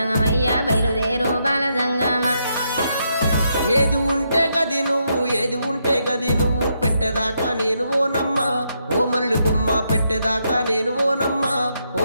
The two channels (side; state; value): both; inverted; correlation -0.79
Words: బయలుదేరు బాల జంగమా. ఏది ఉంటే గది నువ్వు ఏది ఉంటే గది నువ్వు పెట్టేదాకా నేను ఓనమ్మా ఓ మరళి బొమ్మ పెట్టేదాకా నేను ఓనమ్మా